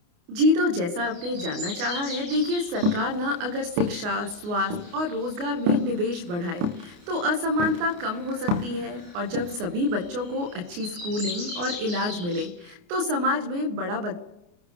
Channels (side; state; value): left; late; 29 ms